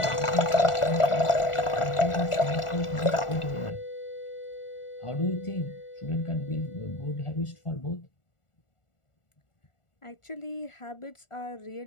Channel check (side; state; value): right; late; 1.4 ms